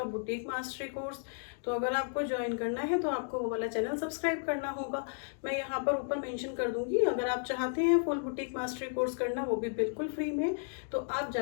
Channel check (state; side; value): silent; right; digital silence